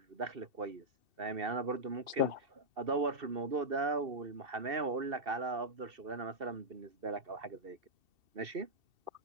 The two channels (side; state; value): left; late; 2.7 ms